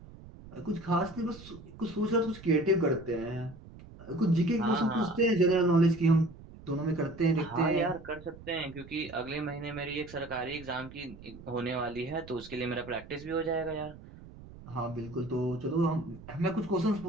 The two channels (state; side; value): noise; right; rumble, 17 dB below the sound